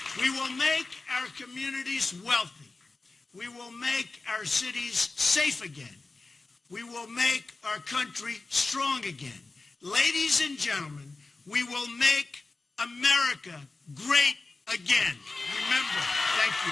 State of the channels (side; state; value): right; quieter; 3.6 dB